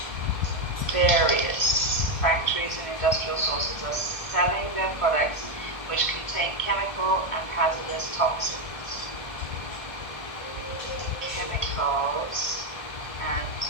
various factories and industrial sources are selling their products which contain chemical and hazardous toxins. Chemicals and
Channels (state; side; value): late; right; 1.5 ms